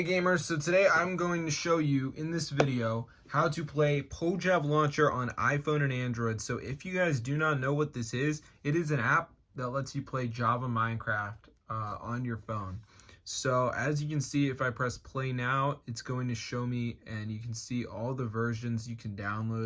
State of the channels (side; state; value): both; identical; correlation 1.00